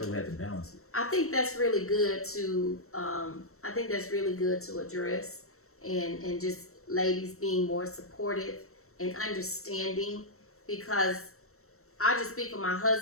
So we had to balance it. I think that's really good to. Address, and just ladies being more supportive and understanding, because I just speak for my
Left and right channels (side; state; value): right; late; 0.63 ms